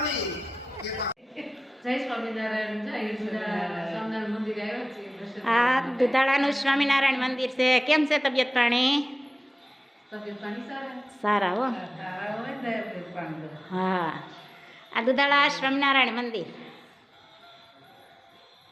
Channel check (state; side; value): normal; both; correlation 0.97